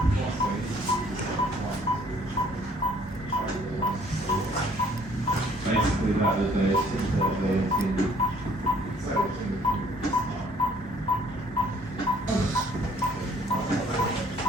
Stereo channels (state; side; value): normal; both; correlation 0.61